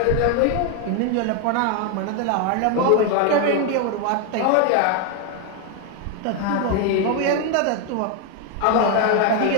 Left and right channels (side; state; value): both; different; correlation 0.01